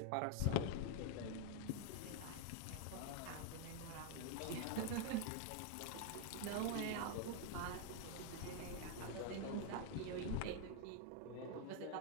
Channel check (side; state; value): both; different; correlation 0.00